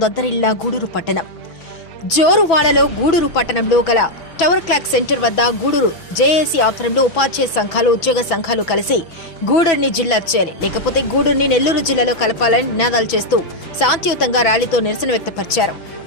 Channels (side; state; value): right; late; 6.1 ms